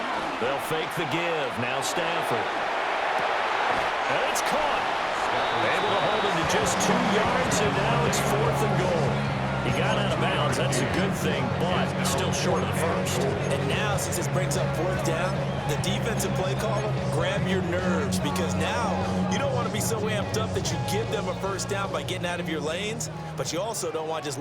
They'll fake the give. Now Stafford. And it's caught. Able to hold him to just 2 yards, and now it's 4th and goal. He got out of bounds. That's a good thing, but still short of the first. And now, since this brings up 4th down, the defensive play caller, grab your nerves, because now you don't want to to be so amped up that you give them a first down by getting out of your lanes, but you also don't want to just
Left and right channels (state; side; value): identical; both; correlation 1.00